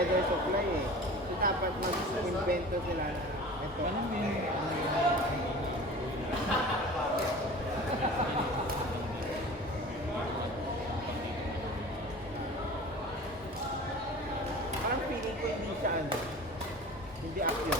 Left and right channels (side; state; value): both; normal; correlation 0.39